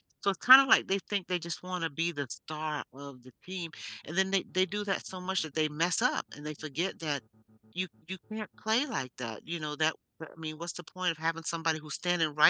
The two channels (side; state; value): both; identical; correlation 1.00